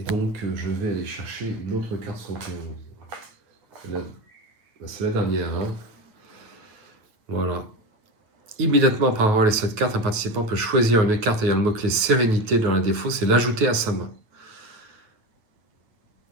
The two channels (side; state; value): left; late; 9.5 ms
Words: donc je vais aller chercher une autre carte 71. C'est la dernière. Hein. Voilà. Immédiatement après avoir les 7 cartes, un participant peut choisir une carte ayant le mot-clé Sérénité dans la défausse et l'ajouter à sa main.